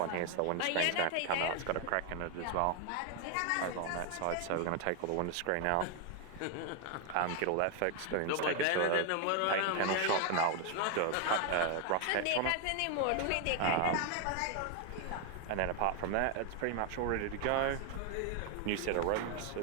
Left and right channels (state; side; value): different; both; correlation 0.00